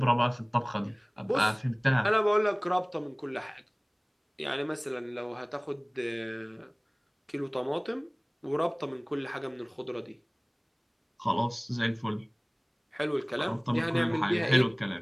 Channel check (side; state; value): both; identical; correlation 1.00